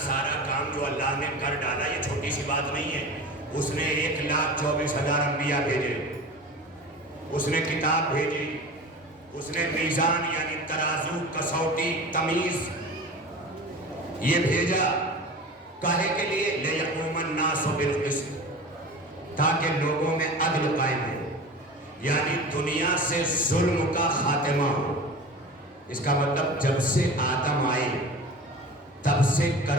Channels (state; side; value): normal; both; correlation 0.35